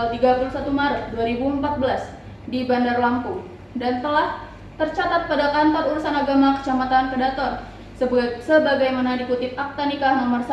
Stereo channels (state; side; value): identical; both; correlation 1.00